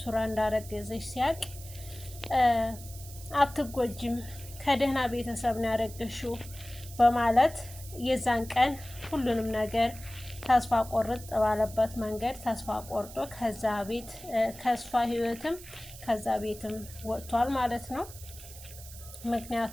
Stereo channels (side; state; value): right; noise; hiss, 16 dB below the sound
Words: እንዳረገዘች ሲያቅ አትጎጅም፣ ከደህና ቤተሰብ ነው ያረገሽው በማለት የዛን ቀን ሁሉንም ነገር ተስፋ ቆርጥ ባለበት መንገድ ተስፋ ቆርጦ ከዛ ቤት ከእሷ ህይወትም ከዛ ቤትም ወጥቷል ማለት ነው።